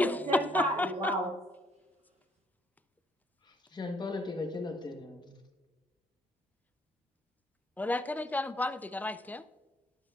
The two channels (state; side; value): normal; both; correlation 0.67